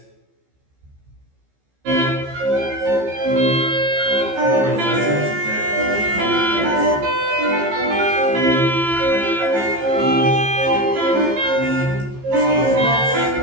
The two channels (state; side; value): late; left; 15 ms